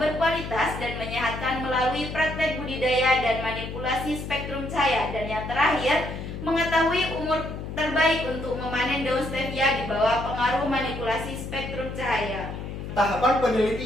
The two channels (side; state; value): left; noise; hum, 8 dB below the sound